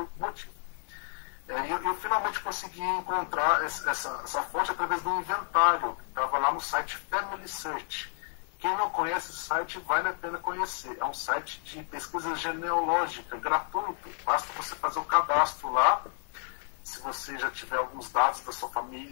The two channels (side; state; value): right; silent; 57 dB below the other